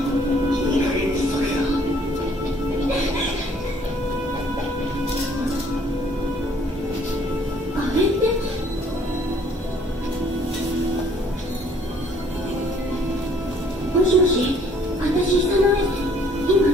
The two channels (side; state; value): both; normal; correlation 0.59